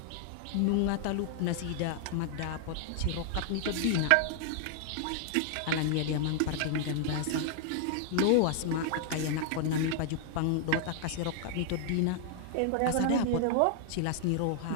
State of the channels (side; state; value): both; different; correlation 0.00